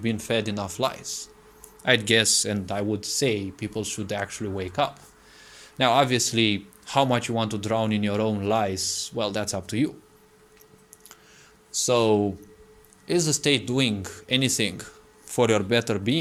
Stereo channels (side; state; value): both; identical; correlation 1.00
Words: been fed enough lies. I'd guess, and I would say, people should actually wake up. Now, obviously, how much you want to drown in your own lies, well, that's up to you. So, is the state doing anything for your better